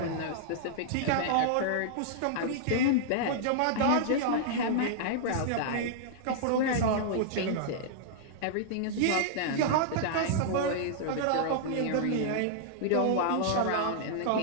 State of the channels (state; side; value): different; both; correlation -0.01